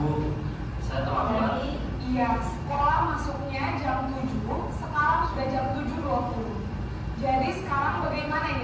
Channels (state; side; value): identical; both; correlation 1.00